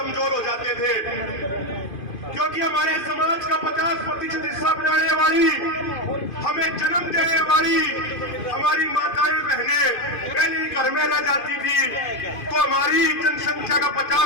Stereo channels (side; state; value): right; late; 2.5 ms